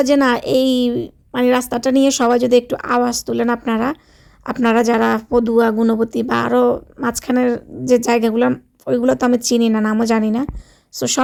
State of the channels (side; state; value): both; identical; correlation 1.00